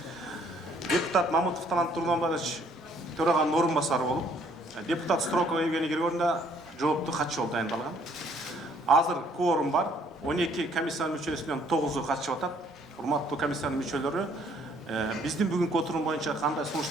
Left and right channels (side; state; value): both; normal; correlation 0.63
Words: депутат Мамытов Талант Тургунбаевич төраганын орун басары болуп, депутат Строкова Евгений Григорьевна жооптуу катчы болуп дайындалган. Азыр кворум бар. 12 комиссиянын мүчөсүнөн 9-у катышып атат. Урматтуу комиссиянын мүчөлөрү, биздин бүгүнкү отурум боюнча кандай сунуш